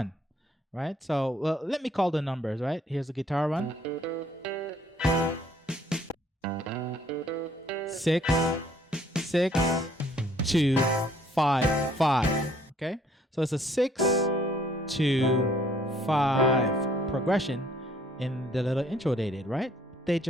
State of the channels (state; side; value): normal; both; correlation 0.62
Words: right? So well, let me call the numbers, right? Here's the guitar one. 6, 6, 2, 5, 5. Okay, so it's a 6, 2, 5 progression in the little intro they did, right? They